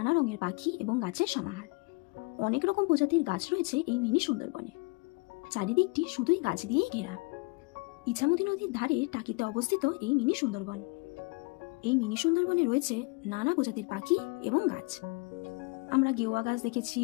রঙের পাখি এবং গাছের সমাহার। অনেক রকম প্রজাতির গাছ রয়েছে এই মিনি সুন্দরবনে। চারিদিকটি শুধুই গাছ দিয়েই ঘেরা। ইছামতি নদীর ধারে টাকিতে অবস্থিত এই মিনি সুন্দরবন। এই মিনি সুন্দরবনে রয়েছে নানা প্রজাতির পাখি এবং গাছ। আমরা গেওয়া গাছ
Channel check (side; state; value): right; quieter; 29.1 dB